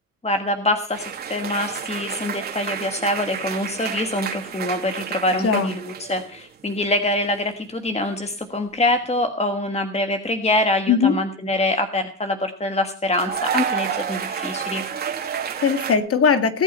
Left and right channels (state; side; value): normal; both; correlation 0.14